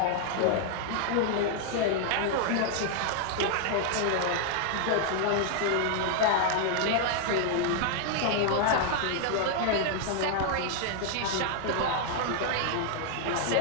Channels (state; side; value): different; both; correlation 0.00